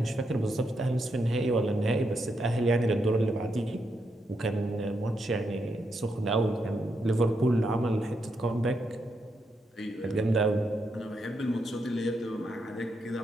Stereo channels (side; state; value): both; normal; correlation 0.81